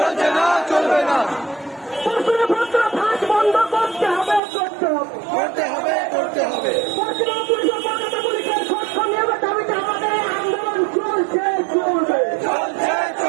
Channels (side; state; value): left; drops out; at 4.4 s